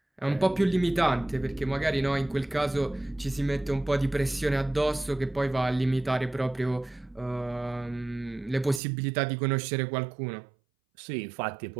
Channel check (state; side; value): drops out; left; at 8.8 s